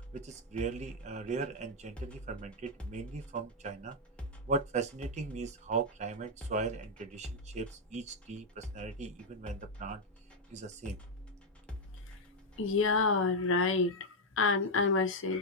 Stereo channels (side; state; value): both; normal; correlation 0.00